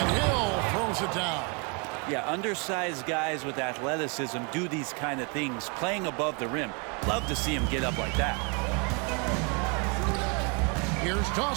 Hill throws it down. Yeah, undersized guys with athleticism do these kind of things, playing above the rim. Love to see him get up like that. Here's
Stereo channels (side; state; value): left; quieter; 33.9 dB